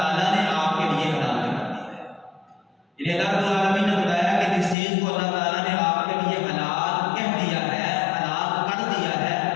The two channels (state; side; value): drops out; right; at 4.8 s